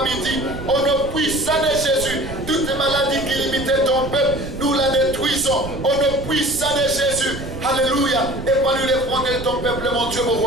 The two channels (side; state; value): right; noise; rumble, 10 dB below the sound